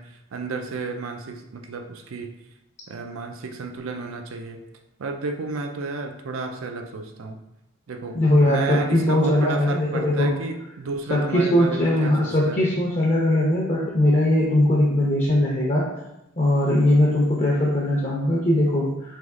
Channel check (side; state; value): both; normal; correlation 0.72